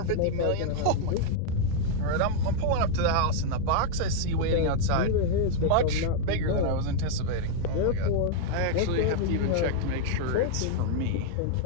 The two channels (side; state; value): both; different; correlation 0.00